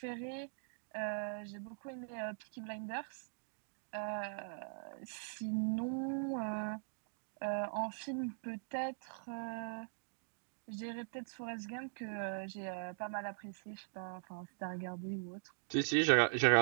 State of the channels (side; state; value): left; silent; digital silence